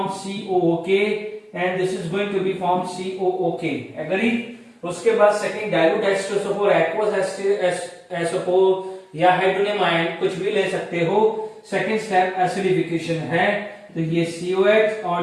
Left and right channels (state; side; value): identical; both; correlation 1.00